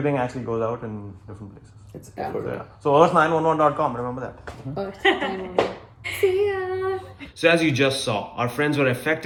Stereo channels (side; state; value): both; identical; correlation 1.00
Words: actually goes out in different places. It's Yeah. effort. So, yeah. So earth911.com, remember that. Earth, See ya. So as you just saw, our friends were